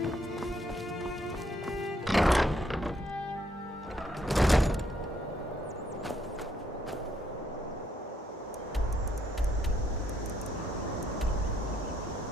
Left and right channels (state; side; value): normal; both; correlation 0.72